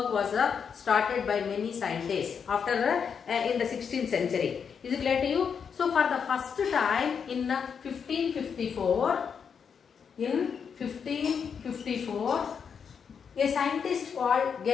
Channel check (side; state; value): right; quieter; 6.7 dB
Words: was started by many scientists after in the 16th century. Is it clear to you? So for the first time in 1554, a scientist called